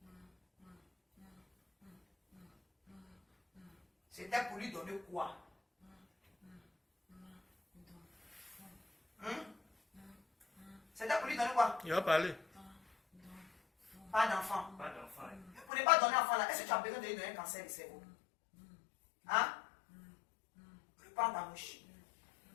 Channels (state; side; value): drops out; right; at 15.7 s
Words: C'était pour lui donner quoi? C'était pour lui donner quoi? Il va parler. Pas d'enfant. Pas d'enfant. Pour ne pas donner enfant là, est-ce que tu as besoin de lui donner un cancer du cerveau? Hein? Reprends ta mouche.